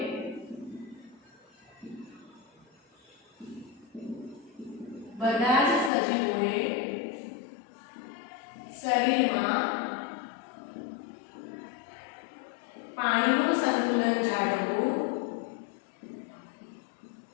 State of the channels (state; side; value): drops out; right; at 5.9 s